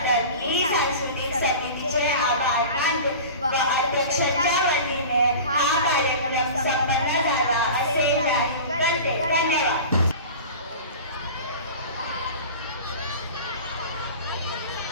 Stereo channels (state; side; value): inverted; both; correlation -0.35